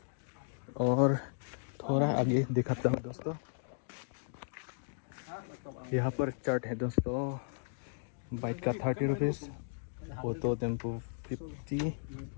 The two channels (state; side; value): silent; right; digital silence